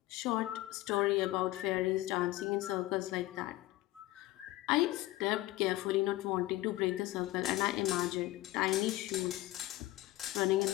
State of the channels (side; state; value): right; quieter; 17.5 dB